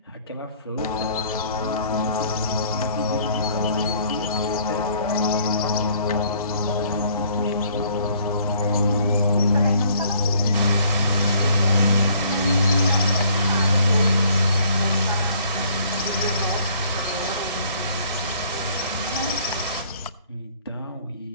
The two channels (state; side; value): inverted; both; correlation -0.60